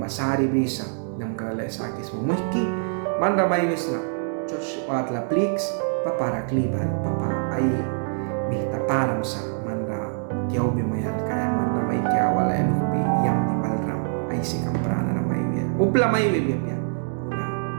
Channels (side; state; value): left; silent; digital silence